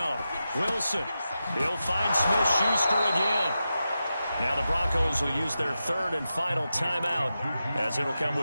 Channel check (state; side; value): inverted; both; correlation -0.90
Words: Wilson. He'll find Smith-Schuster again. Now the Broncos will use their 3rd and final timeout, as it'll come